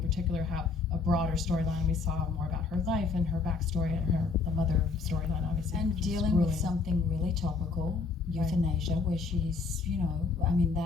particular have a broader storyline. We saw more about her life and her backstory and the mother storyline, obviously. And which is dealing grueling. with something really topical, Right. euthanasia, where she's, I mean,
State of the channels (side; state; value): right; quieter; 4.5 dB